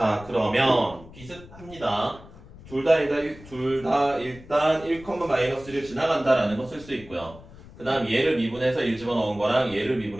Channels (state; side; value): noise; left; rumble, 19 dB below the sound